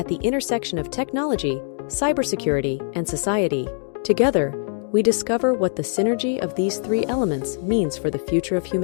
the intersection of technology, cybersecurity, and society. Together, we discover what the synergy of these three elements means for the future of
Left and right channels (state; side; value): silent; right; 60 dB below the other